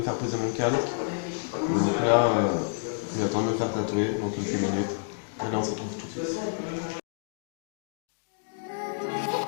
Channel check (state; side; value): silent; right; digital silence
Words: faire poser mon calque. Donc là, j'attends de me faire tatouer dans quelques minutes. Et là on se retrouve tout de suite.